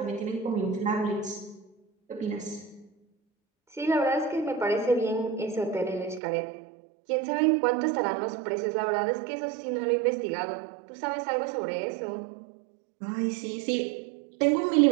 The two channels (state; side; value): drops out; left; at 6.2 s